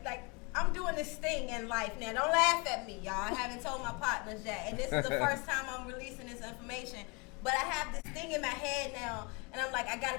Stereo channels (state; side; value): quieter; right; 30.0 dB